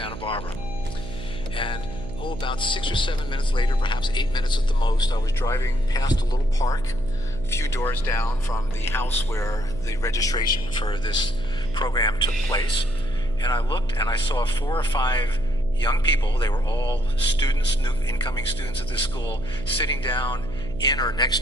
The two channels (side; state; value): right; noise; hum, 11 dB below the sound